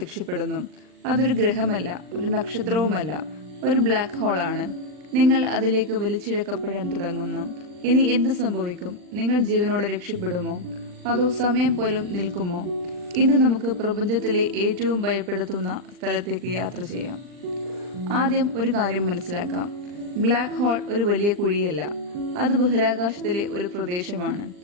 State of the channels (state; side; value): late; left; 39 ms